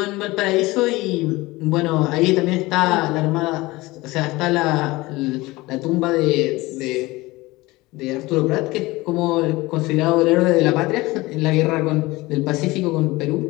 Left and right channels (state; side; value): quieter; right; 20.7 dB